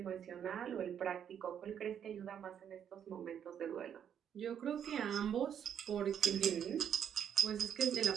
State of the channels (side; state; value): left; quieter; 8.8 dB